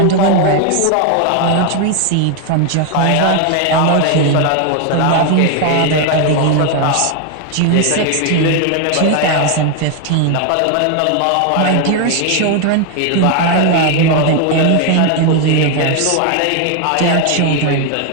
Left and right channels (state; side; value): different; both; correlation 0.01